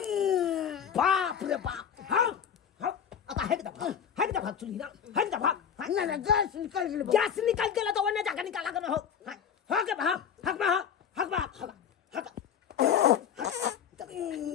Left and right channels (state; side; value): quieter; right; 8.0 dB